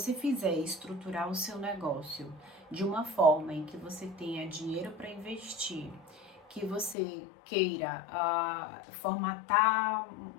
fizer estruturar o seu negócio de uma forma em que você tenha dinheiro para investir, que você queira formatar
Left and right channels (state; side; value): drops out; right; at 7.0 s